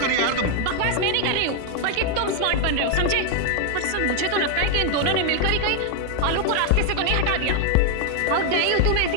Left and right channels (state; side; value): different; both; correlation 0.00